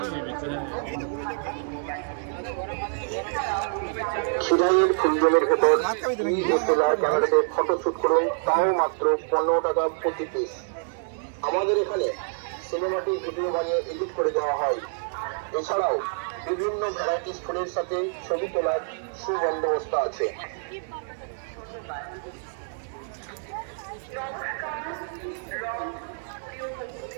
খিরাইয়ের ফুলজলের ভেতর ডিএসএলআর ক্যামেরাতে ফটোশুট করুন, তাও মাত্র 15 টাকা প্রতি পিস। আমাদের এখানে সিনেমাটিক ভিডিও বানিয়ে এডিট করে দেওয়া হয়। এছাড়াও বিভিন্ন ভ্যারাইটিস ফুলের সাথে ছবি তোলার সুবন্দোবস্ত আছে।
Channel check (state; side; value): silent; left; digital silence